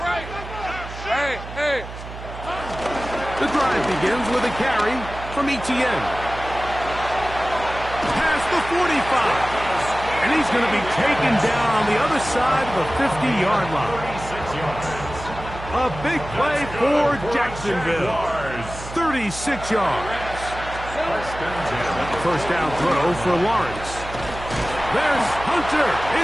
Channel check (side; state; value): right; noise; hum, 11 dB below the sound